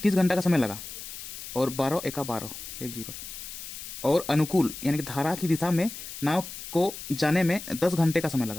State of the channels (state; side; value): noise; left; hiss, 10 dB below the sound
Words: घंटा का समय लगा, और 12 एका 12 1 0, और अनुकूल यानी कि धारा की दिशा में नाव को जाने में 10 घंटे का समय